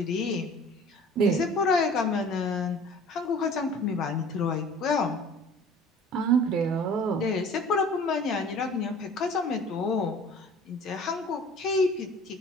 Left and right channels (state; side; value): normal; both; correlation 0.46